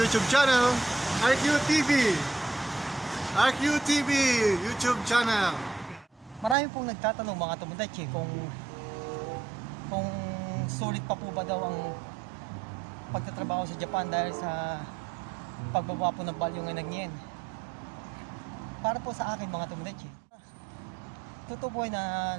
channel, RQTV. RQTV YouTube channel. Marami pong nagtatanong mga Tomodachi kung sulit pa po ba daw ang pagtatrabaho sa Japan dahil sa pagbaba po ng balyo ng yen. Para po sa akin mga Tomodachi, totoo po na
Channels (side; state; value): left; drops out; at 6.6 s